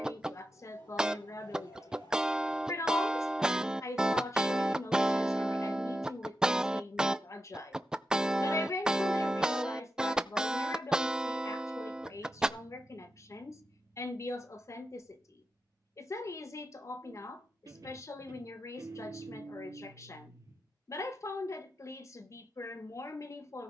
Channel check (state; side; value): normal; both; correlation 0.89